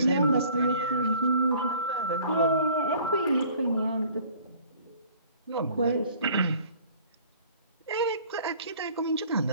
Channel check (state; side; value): inverted; both; correlation -0.52